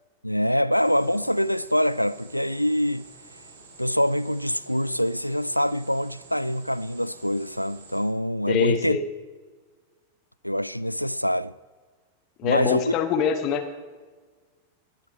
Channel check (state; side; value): inverted; both; correlation -0.78